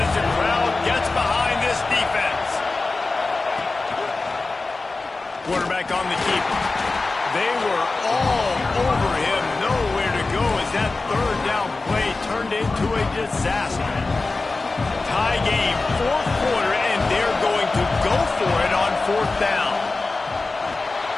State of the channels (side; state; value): right; quieter; 3.5 dB